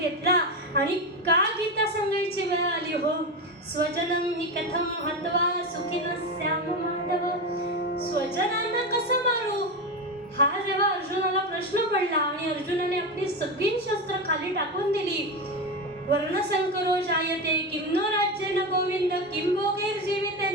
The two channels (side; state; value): both; normal; correlation 0.17